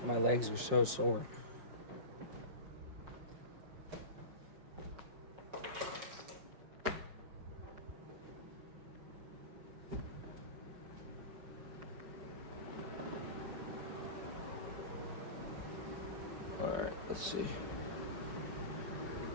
my legs are so sore. Alright, let's see.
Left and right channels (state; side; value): late; left; 5.7 ms